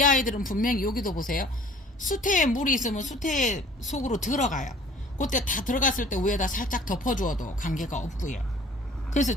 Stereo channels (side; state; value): both; normal; correlation 0.51